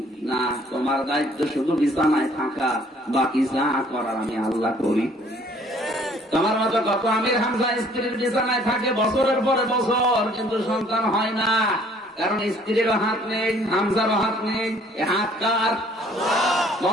না, তোমার দায়িত্ব শুধু বিছানায় থাকা, বাকি যা করার আমি আল্লাহ করি। তোমার মতো কত আমির হামজা স্ত্রীর বিছানায় থাকে বছরের পরে বছর, কিন্তু সন্তান হয় না, কারণ স্ত্রীরও হাত নেই, হামজারও হাত নেই। এ হাত কার?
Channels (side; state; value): both; normal; correlation 0.58